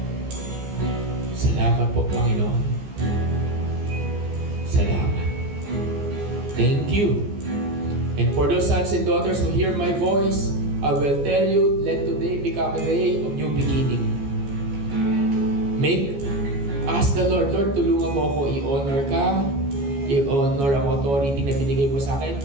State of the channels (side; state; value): left; late; 14 ms